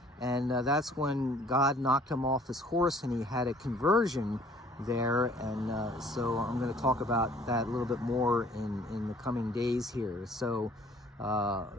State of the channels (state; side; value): normal; both; correlation 0.56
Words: and that's when God knocked him off his horse, and he had a conversion there. And so I'm going to talk about that a little bit more in the coming days here. So